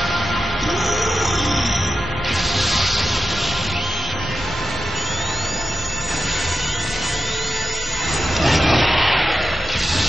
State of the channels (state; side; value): normal; both; correlation 0.90